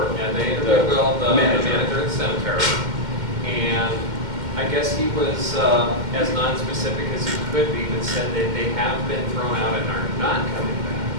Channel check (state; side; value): late; left; 2.1 ms